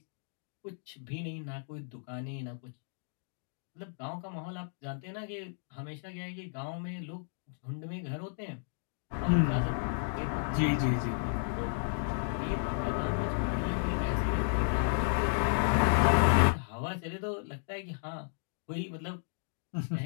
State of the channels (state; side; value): silent; right; digital silence